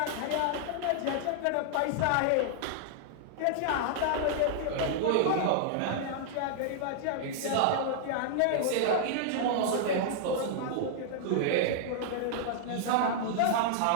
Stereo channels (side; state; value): both; different; correlation -0.01